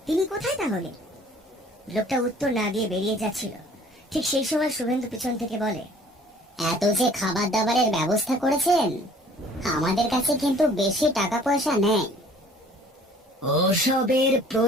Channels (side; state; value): both; normal; correlation 0.53